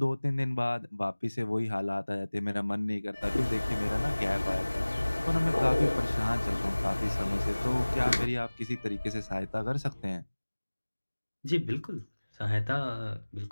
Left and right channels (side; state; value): both; inverted; correlation -1.00